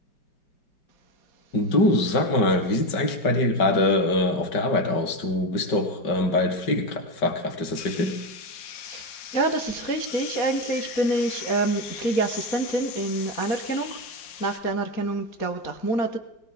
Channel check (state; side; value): late; right; 5.2 ms